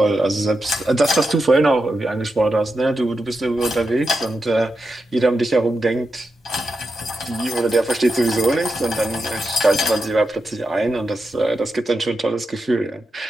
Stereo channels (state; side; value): normal; both; correlation 0.87